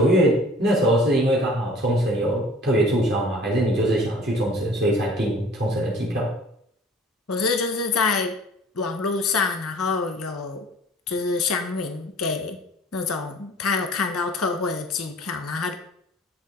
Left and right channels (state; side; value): normal; both; correlation 0.48